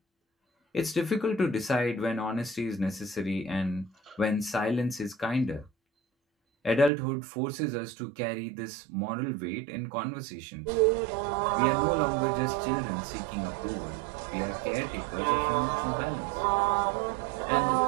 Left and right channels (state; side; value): drops out; left; at 6.9 s